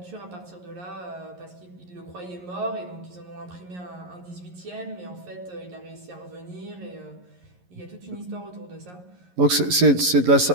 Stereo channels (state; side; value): late; left; 11 ms